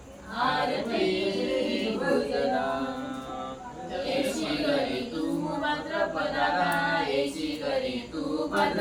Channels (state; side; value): identical; both; correlation 1.00